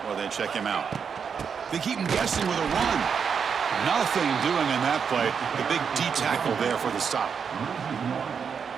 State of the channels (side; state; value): left; quieter; 6.5 dB